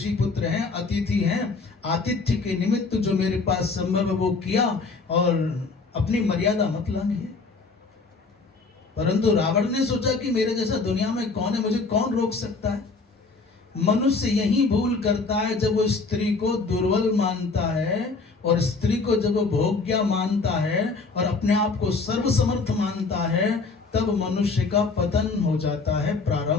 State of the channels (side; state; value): right; quieter; 4.1 dB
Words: पुत्र हैं, अतिथि हैं, आतिथ्य के निमित्त जो मेरे पास संभव वो किया और अपनी मर्यादा मत लांघिए। परंतु रावण ने सोचा कि मेरे जैसा दुनिया में कौन है, मुझे कौन रोक सकता है। मनुष्य यही भूल करता है जब वो स्त्री को दुर्बल मानता है और स्त्री को जब वो भोग्या मानता है और अपने आप को सर्वसमर्थ मानता है, तब मनुष्य का पतन हो जाता है